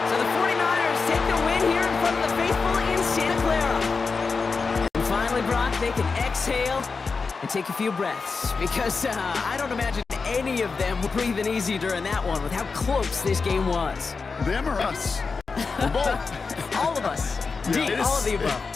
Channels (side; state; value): right; quieter; 4.6 dB